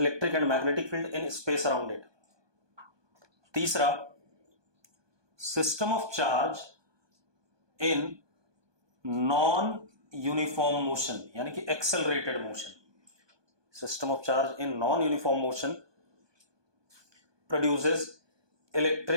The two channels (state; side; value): late; left; 1.2 ms